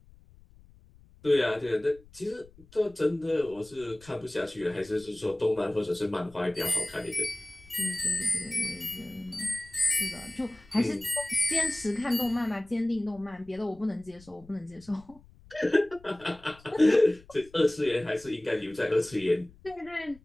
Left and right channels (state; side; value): noise; left; rumble, 25 dB below the sound